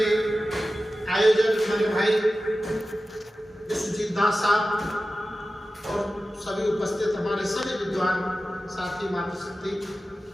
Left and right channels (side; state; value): both; normal; correlation 0.94